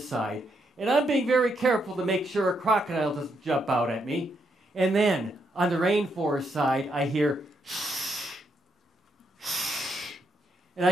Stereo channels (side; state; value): both; normal; correlation 0.78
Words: side. And I'm being very careful to make sure a crocodile doesn't jump out at me. And then, on the rainforest side, I hear shh, shh. And